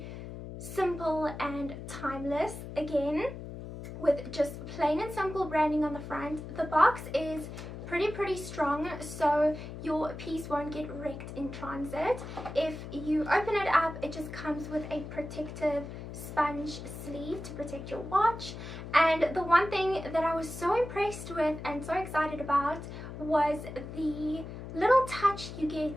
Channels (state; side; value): noise; left; hum, 10 dB below the sound